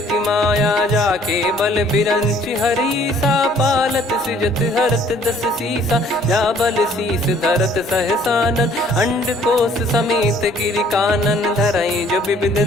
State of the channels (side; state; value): both; normal; correlation 0.58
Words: माया। जाके बल बिरंच हरीसा, पालत सृजत हरत दस सीसा। जा बल शीस धरत सहसानन, अंड कोश समेत गिरि कानन। धरई जो विविध